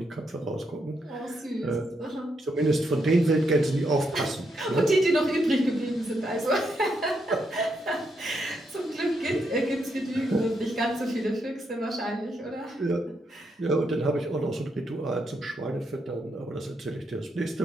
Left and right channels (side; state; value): both; normal; correlation 0.80